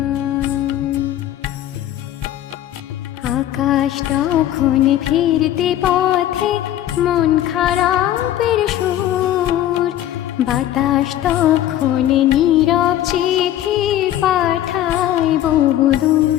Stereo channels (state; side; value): quieter; right; 12.4 dB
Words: আকাশ তখন ফিরতে পথে মন খারাপের সুর, বাতাস তখন নীরব চিঠি পাঠায় বহুদূর